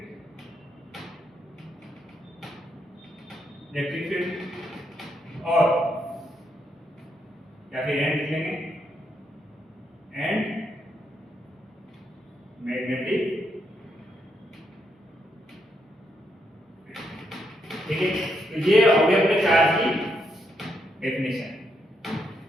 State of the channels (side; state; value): both; normal; correlation 0.78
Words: और या फिर and लिख लेंगे, एंड मैग्नेटिक, ठीक है। तो ये हो गया अपने चार्ज की डेफिनेशन।